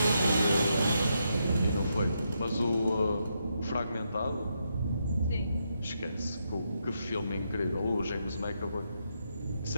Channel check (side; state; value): both; inverted; correlation -0.81